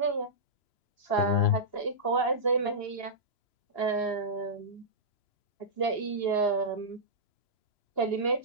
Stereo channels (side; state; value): right; late; 2.8 ms